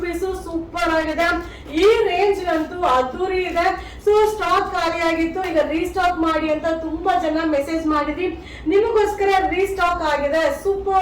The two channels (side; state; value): both; identical; correlation 1.00